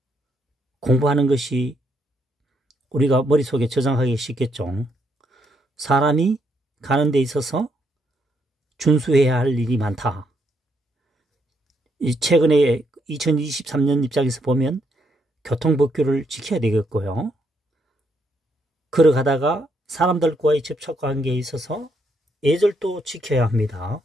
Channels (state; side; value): normal; both; correlation 0.75